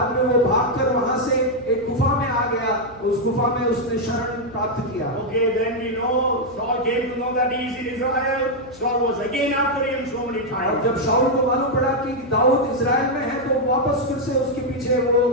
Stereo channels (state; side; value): noise; left; hum, 22 dB below the sound